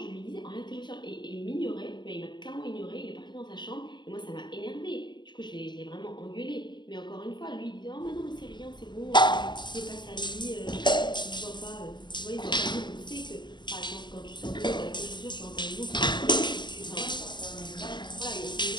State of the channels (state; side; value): late; right; 0.22 ms